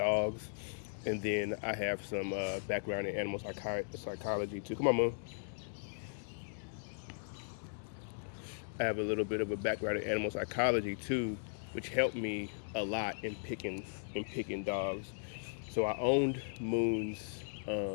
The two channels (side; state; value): right; silent; digital silence